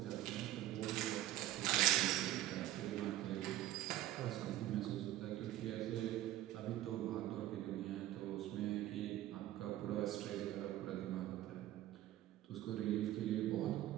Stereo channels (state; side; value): quieter; left; 14.2 dB